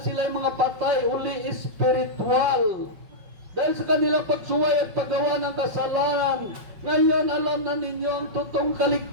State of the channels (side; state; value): left; late; 5.3 ms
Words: sila ay mga patay, uli espiritual. Dahil sa kanilang pagsuway at paggawa ng kasalanan, ngayon alam na ninyo ang totoong